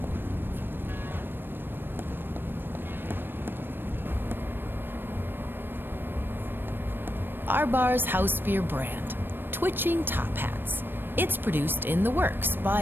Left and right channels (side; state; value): left; late; 0.097 ms